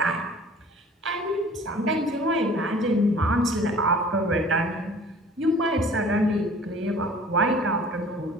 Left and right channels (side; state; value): both; normal; correlation 0.48